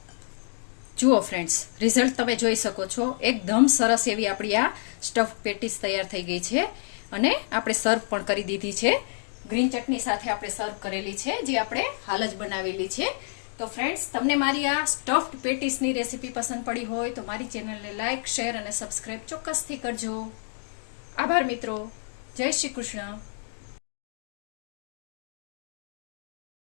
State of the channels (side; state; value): right; silent; digital silence